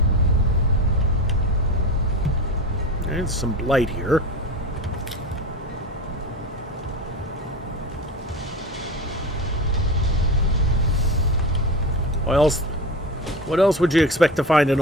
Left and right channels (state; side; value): normal; both; correlation 0.26